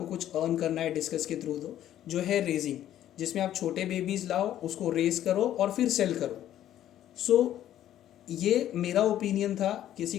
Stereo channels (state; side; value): quieter; right; 11.9 dB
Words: कुछ अर्न करना है डिस्कस के थ्रू, तो जो है रेजिंग, जिसमें आप छोटे बेबीज़ लाओ, उसको रेस करो और फिर सेल करो। सो ये मेरा ओपिनियन था, किसी